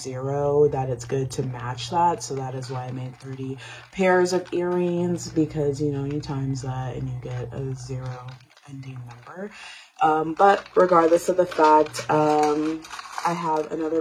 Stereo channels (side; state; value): both; identical; correlation 1.00